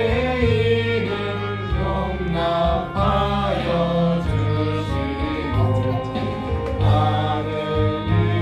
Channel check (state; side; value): identical; both; correlation 1.00